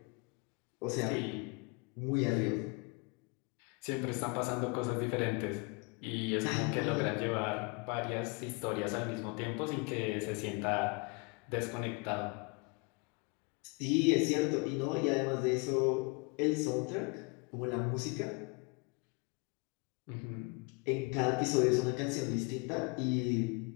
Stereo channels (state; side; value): quieter; right; 31.2 dB